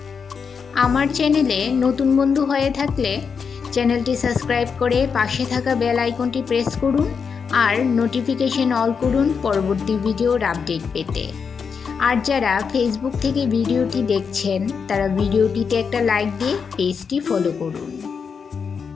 আমার চ্যানেলে নতুন বন্ধু হয়ে থাকলে চ্যানেলটি সাবস্ক্রাইব করে পাশে থাকা বেল আইকনটি প্রেস করুন আর নোটিফিকেশন অল করুন পরবর্তী ভিডিওর আপডেট পেতে। আর যারা ফেসবুক থেকে ভিডিওটি দেখছেন তারা ভিডিওটিতে একটা লাইক দিয়ে পেজটি ফলো করুন।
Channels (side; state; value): right; quieter; 6.0 dB